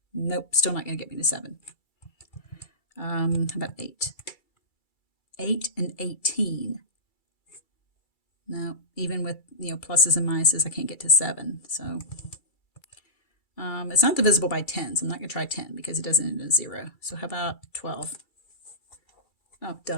Nope, still not going to get me to 7. How about 8? 8 and 18. No, even with, you know, pluses and minuses, I can't get to 7. So it's not divisible by 10, so I'm not going to try 10 because it doesn't end in 0. So how about 12? Oh,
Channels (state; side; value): late; right; 2.3 ms